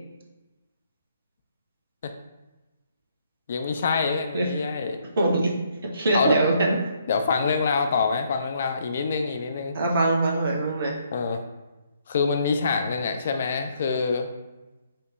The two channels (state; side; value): inverted; both; correlation -0.70